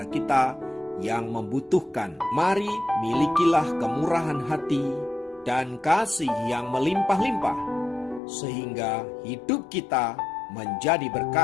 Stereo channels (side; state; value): right; drops out; at 8.2 s